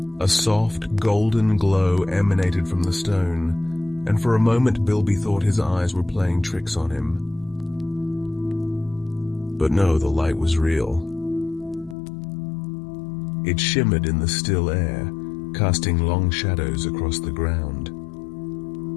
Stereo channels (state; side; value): drops out; right; at 12.0 s